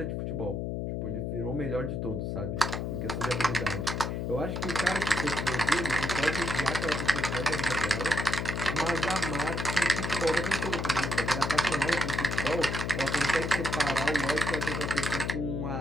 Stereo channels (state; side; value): noise; left; hum, 2 dB below the sound